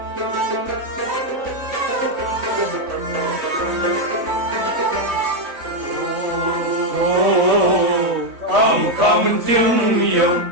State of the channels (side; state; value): left; late; 3.6 ms